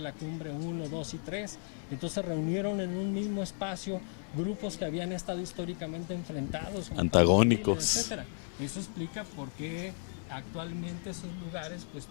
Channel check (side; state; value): right; silent; 55 dB below the other